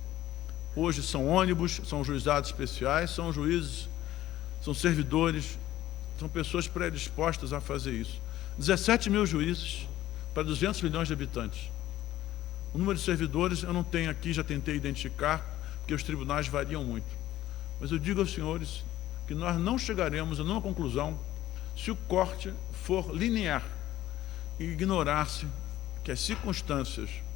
hoje são ônibus, são juizados especiais, são juízes, são servidores, são pessoas predispostas a fazer isso. 17 mil juízes para 200 milhões de habitantes. O número de servidores eu não tenho aqui, já tentei identificar, porque os tribunais variam muito. Mas eu digo aos senhores que nós não chegaremos a nenhuma conclusão se o corte for linear e ignorar-se que as circunstâncias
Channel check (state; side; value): quieter; right; 14.3 dB